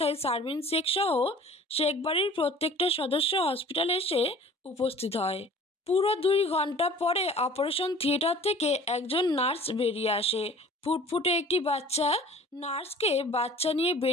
শারমিন শেখ সহ শেখ বাড়ির প্রত্যেকটা সদস্য হসপিটালে এসে উপস্থিত হয়। পুরো 2 ঘন্টা পরে অপারেশন থিয়েটার থেকে একজন নার্স বেরিয়ে আসে। ফুটফুটে একটি বাচ্চা। নার্সকে বাচ্চা নিয়ে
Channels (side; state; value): both; normal; correlation 0.47